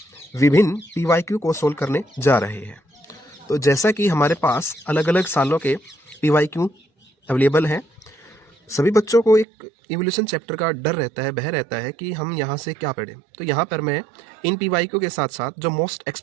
विभिन्न पीवाईक्यू को सोल्व करने जा रहे हैं। तो जैसा कि हमारे पास अलग अलग सालों के पीवाईक्यू अवेलेबल हैं, सभी बच्चों को एक इवोल्यूशन चैप्टर का डर रहता है, भय रहता है कि हम यहाँ से क्या पढ़ें। तो यहाँ पर मैं इन पीवाईक्यू के साथ साथ जो मोस्ट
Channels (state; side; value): drops out; left; at 9.5 s